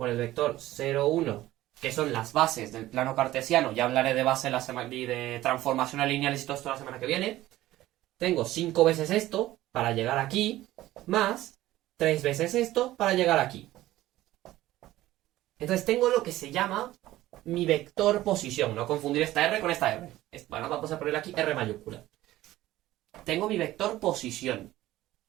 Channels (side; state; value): left; quieter; 15.6 dB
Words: el vector 0, 1, que son las bases del plano cartesiano. Ya hablaré de base y de transformaciones lineales y todo esto la semana que viene. Tengo 5 veces esto para llegar aquí, más 3 veces esto para llegar aquí. Entonces tengo lo que se llama mi vector posición. No confundir esta R con esta R. Bueno, vamos a poner aquí R mayúscula. Tengo mi vector posición.